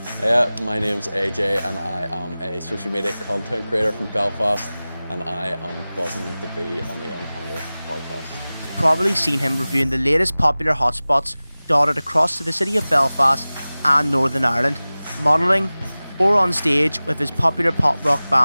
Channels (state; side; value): inverted; both; correlation -0.98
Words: My name's AJ and I am a social media content creator from Belfast, and I am buzzing to be on the Young Hunger podcast. You've probably seen him reviewing the latest popular hotspots dotted across the city of Belfast and Northern Ireland, modelling or on stage with his popular pop rock